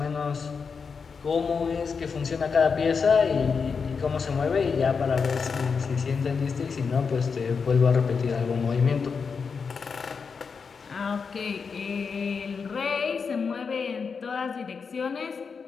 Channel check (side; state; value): right; quieter; 5.5 dB